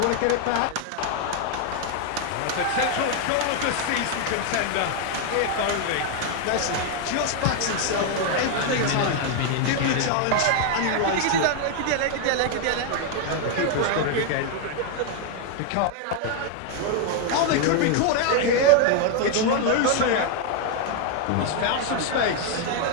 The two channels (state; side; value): different; both; correlation 0.00